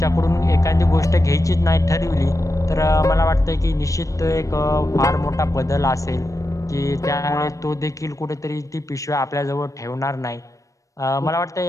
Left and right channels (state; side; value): late; right; 0.16 ms